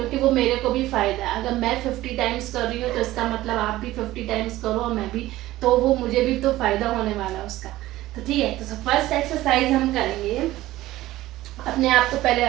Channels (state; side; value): quieter; left; 16.3 dB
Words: वो मेरे को भी फायदा है। अगर मैं 50 टाइम्स कर रही हूँ तो इसका मतलब आप भी 50 टाइम्स करो और मैं भी, तो वो मुझे भी तो फायदा होने वाला है उसका। तो ठीक है, तो फर्स्ट एक्सरसाइज हम करेंगे अपने आप को पहले